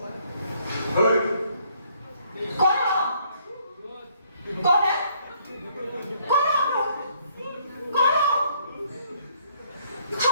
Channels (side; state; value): both; inverted; correlation -0.66